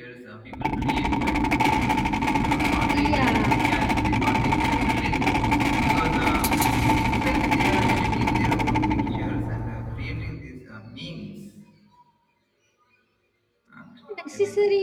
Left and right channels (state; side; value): identical; both; correlation 1.00